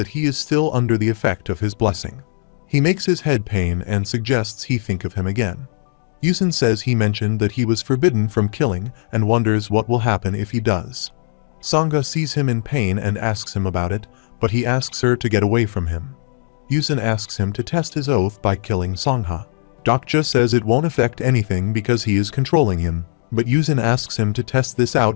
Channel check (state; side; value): silent; right; digital silence